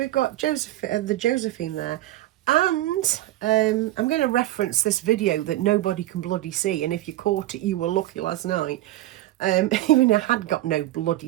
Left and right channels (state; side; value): quieter; left; 15.5 dB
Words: got the Josephine there, and I'm going to reference this video that nobody can bloody see, and if you caught it, you were lucky last night. Even I had got no